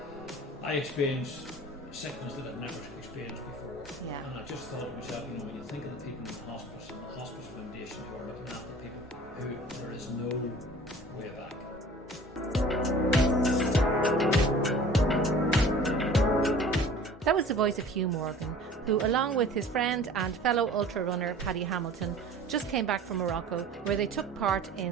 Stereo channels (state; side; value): normal; both; correlation 0.45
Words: I experienced sickness that I'd never experienced before. Yeah. And I just thought to myself, when you think of the people in the hospice and the hospice foundation who are looking after people, who there is no way back. That was the voice of Hugh Morgan, who, along with his friend and fellow ultra runner Paddy Hamilton, just came back from Morocco, where they took part